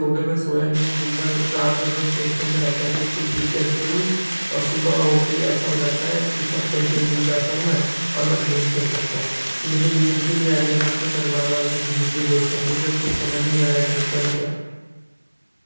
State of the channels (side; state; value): both; inverted; correlation -1.00